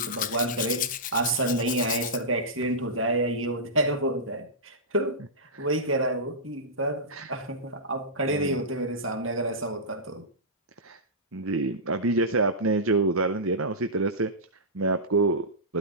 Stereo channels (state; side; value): normal; both; correlation -0.16